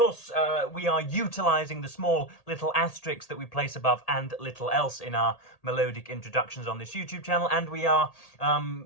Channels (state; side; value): late; right; 1.8 ms